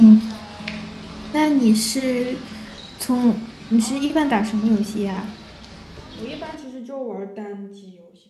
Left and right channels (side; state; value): both; identical; correlation 1.00